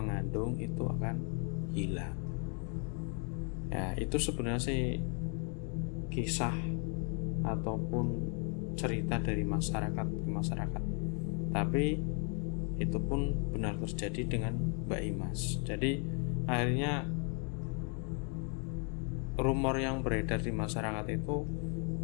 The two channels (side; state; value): right; quieter; 38.9 dB